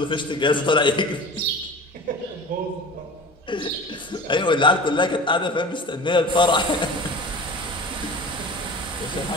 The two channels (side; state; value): both; normal; correlation 0.37